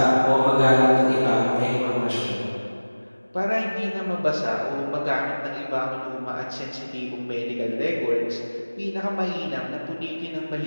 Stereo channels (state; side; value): inverted; both; correlation -1.00